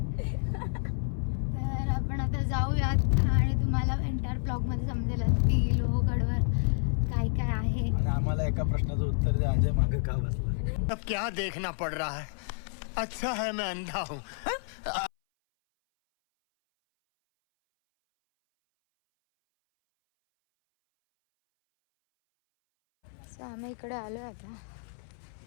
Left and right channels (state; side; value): silent; right; 58 dB below the other